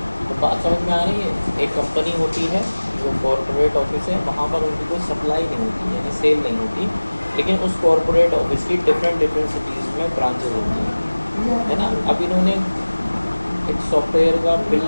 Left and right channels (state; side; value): inverted; both; correlation -1.00